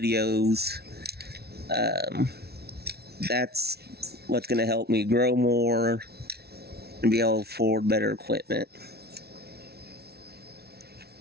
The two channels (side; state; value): left; late; 0.46 ms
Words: that's what's going to help me grow more and be able to afford better equipment.